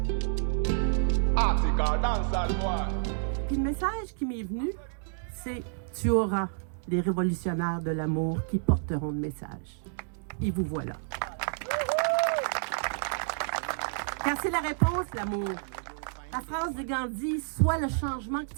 Article dancehall boy. Puis le message qui m'est venu, c'est « Tu auras les révolutionnaires de l'amour qui porteront le message. » Et vous voilà. Car c'est la réponse, l'amour. La phrase de Gandhi « Sois le changement que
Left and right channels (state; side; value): silent; left; digital silence